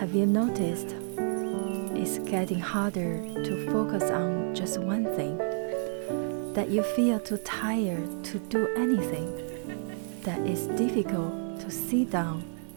you noticed? It's getting harder to focus on just one thing, that you feel too tired to do anything, that it's difficult to sit down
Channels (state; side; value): silent; left; digital silence